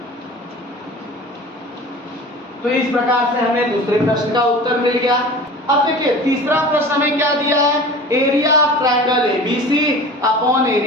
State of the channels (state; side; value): normal; both; correlation 0.38